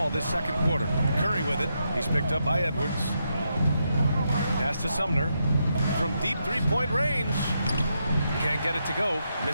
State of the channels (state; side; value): inverted; both; correlation -0.82